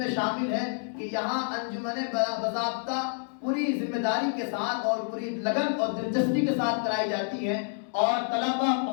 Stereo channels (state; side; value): silent; right; digital silence